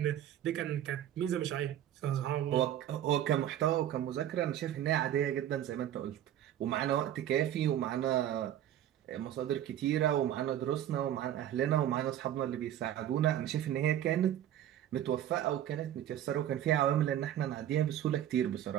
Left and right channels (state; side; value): quieter; left; 11.4 dB